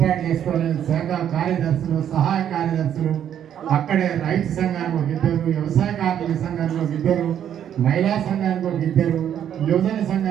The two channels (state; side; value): quieter; left; 9.7 dB